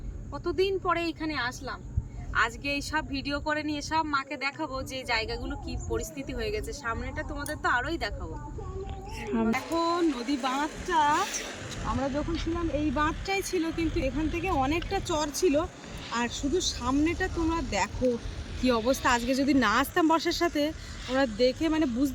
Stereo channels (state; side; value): identical; both; correlation 1.00